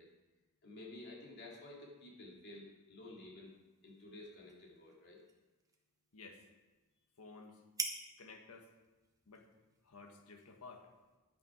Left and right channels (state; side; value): normal; both; correlation 0.08